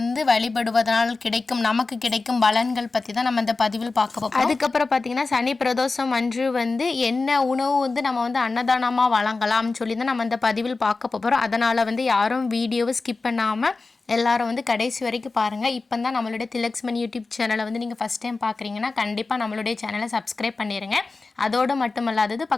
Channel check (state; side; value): quieter; right; 3.8 dB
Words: வழிபடுவதனால் நமக்கு கிடைக்கும் பலன்கள் பற்றி தான் நம்ம இந்த பதிவில் பார்க்க போகிறோம். அதுக்கப்புறம் பார்த்தீங்கன்னா, சனி பிரதோஷம் அன்று என்ன உணவு நம்ம அன்னதானமாக வழங்கலாம்னு சொல்லி தான் நம்ம இந்த பதிவில் பார்க்க போகிறோம். அதனால் யாரும் வீடியோவை ஸ்கிப் பண்ணாமல் எல்லாரும் கடைசி வரைக்கும் பாருங்கள். இப்போ தான் நம்மளுடைய திலக்ஸ்மன் யூடியூப் சேனலை நீங்கள் ஃபஸ்ட் டைம் பார்க்குறீங்கன்னா கண்டிப்பாக நம்மளுடைய சேனலை சப்ஸ்கிரைப் பண்ணிடுங்க. அதோடு மட்டுமல்லாதது